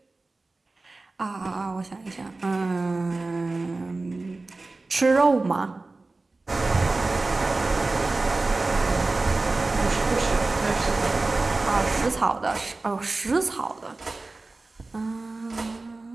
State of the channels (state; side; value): quieter; left; 3.4 dB